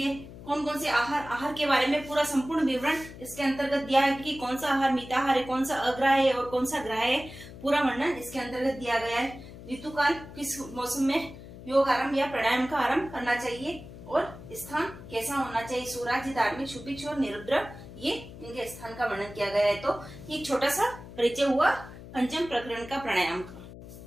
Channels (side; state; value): left; noise; hum, 15 dB below the sound